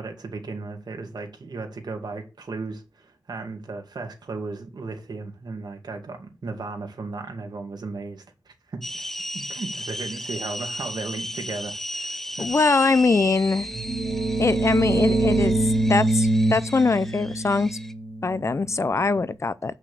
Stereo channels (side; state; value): both; normal; correlation 0.79